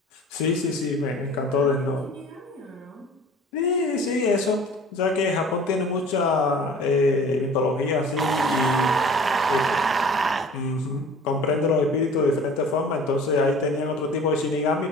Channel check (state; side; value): normal; both; correlation 0.46